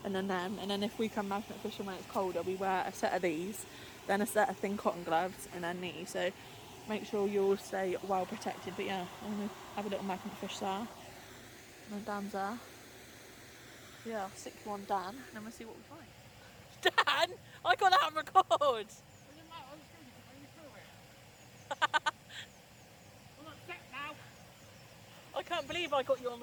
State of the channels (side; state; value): both; identical; correlation 1.00